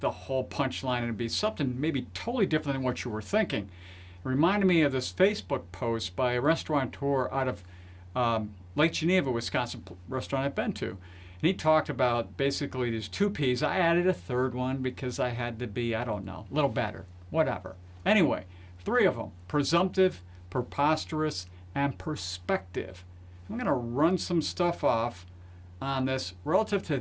the whole punchline and it'd be something maybe totally different than what you were thinking. It reminded me of this Facebook post by a restaurateur out of Lake Geneva, Wisconsin, restaurant I've been to. And he talked about basically these two P's. I added a third one because I had to be, I don't know, a little better, whatever. Anyway, three of them: presumptive, preposterous, and perspective. I'm going to run some stuff off on this relative to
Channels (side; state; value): both; identical; correlation 1.00